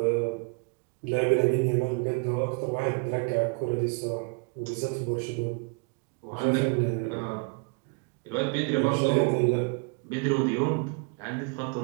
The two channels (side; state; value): left; quieter; 33.0 dB